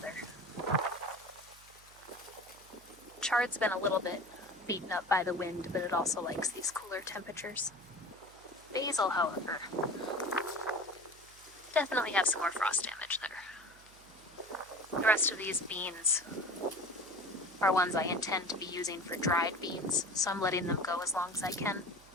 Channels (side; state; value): right; noise; hum, 25 dB below the sound